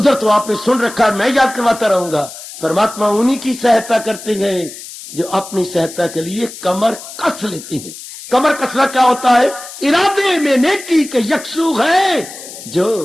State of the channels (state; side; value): noise; left; hiss, 14 dB below the sound